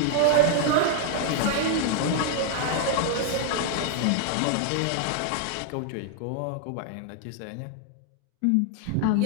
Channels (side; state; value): both; different; correlation 0.00